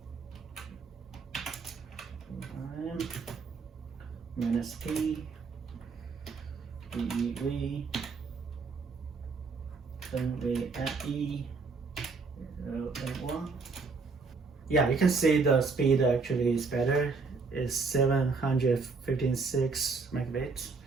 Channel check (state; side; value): quieter; left; 4.5 dB